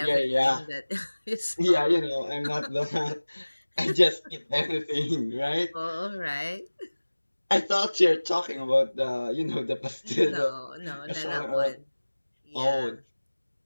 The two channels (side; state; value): both; inverted; correlation -1.00